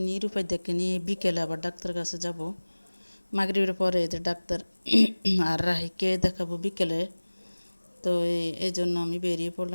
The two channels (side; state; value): both; inverted; correlation -1.00